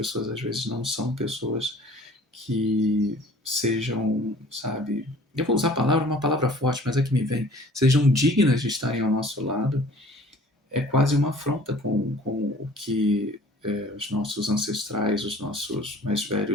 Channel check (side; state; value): both; normal; correlation 0.50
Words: às vezes não são pessoas que sejam, sabe, eu vou usar a palavra, uma palavra forte, mas é que me vem, sejam dignas de estarem ao nosso lado, é quase uma afronta com o que os nossos ancestrais, os nossos mais